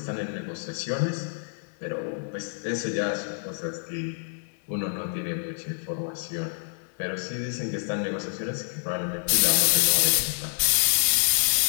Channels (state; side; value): silent; right; digital silence